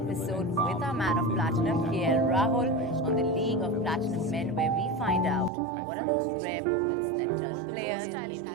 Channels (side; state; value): left; drops out; at 5.5 s